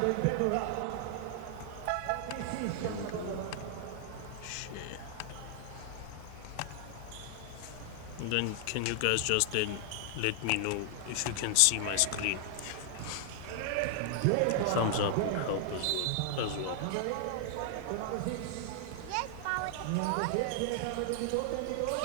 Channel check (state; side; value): different; both; correlation 0.00